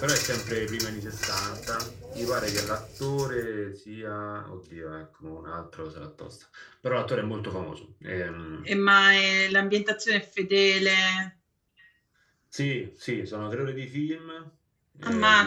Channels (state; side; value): identical; both; correlation 1.00